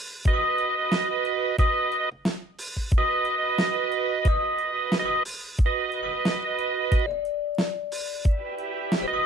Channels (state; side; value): normal; both; correlation 0.67